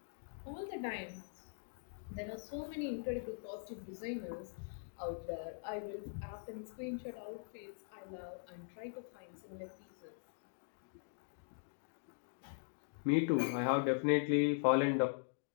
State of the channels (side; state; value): right; silent; digital silence